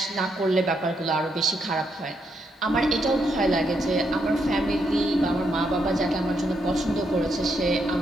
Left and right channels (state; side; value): normal; both; correlation 0.78